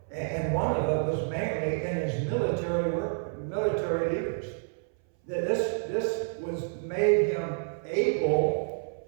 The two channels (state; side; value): silent; left; 59 dB below the other